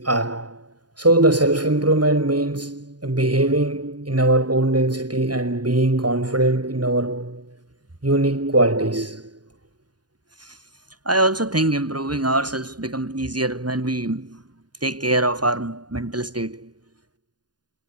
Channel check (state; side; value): late; left; 0.70 ms